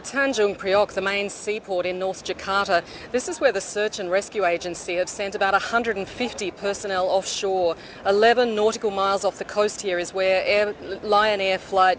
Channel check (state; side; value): identical; both; correlation 1.00